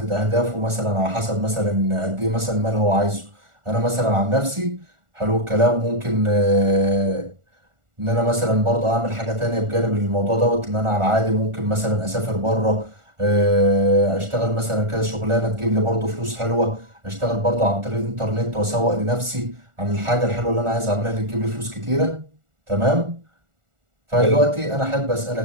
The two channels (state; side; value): late; left; 1.4 ms